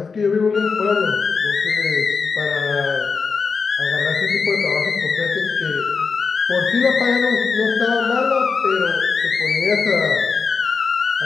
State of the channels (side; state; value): right; quieter; 5.1 dB